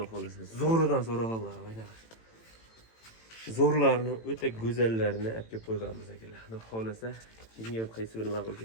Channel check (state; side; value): late; right; 18 ms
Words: xolasa. Zo'ridan so'rag'anlar, mana. Zo'rlarni o'ta go'zallarini olib kelib qo'yganmiz akalar. Xudo xolasa, kimga qaysi biri ma'qul